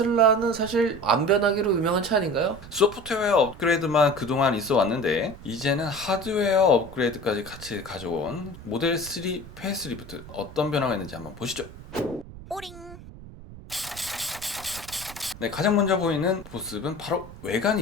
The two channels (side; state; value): right; noise; rumble, 16 dB below the sound